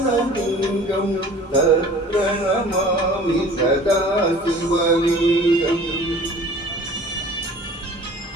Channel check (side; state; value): both; normal; correlation 0.46